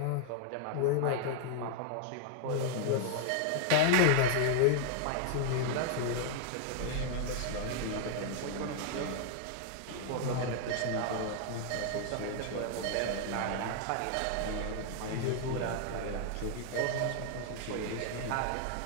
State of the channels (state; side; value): different; both; correlation 0.00